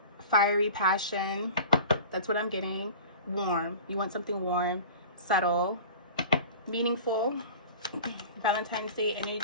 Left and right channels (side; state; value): both; inverted; correlation -0.38